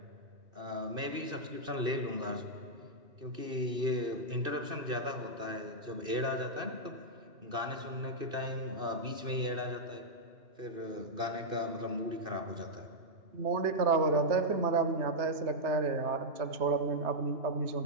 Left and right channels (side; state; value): left; late; 2.6 ms